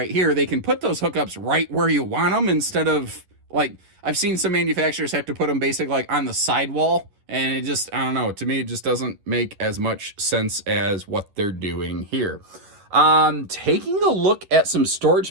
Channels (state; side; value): late; left; 11 ms